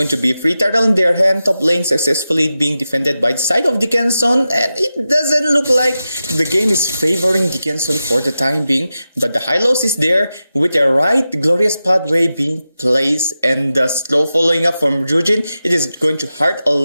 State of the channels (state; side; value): inverted; both; correlation -0.92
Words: to be free turtle in their hand. Top lane successfully being defended by the side of Dickinson, and it doesn't look like the game is favoring Dickinson for the time being, but the Hylos is there with a right glorious pathway being placed, and the slow following up from Jujin. It is going to hurt a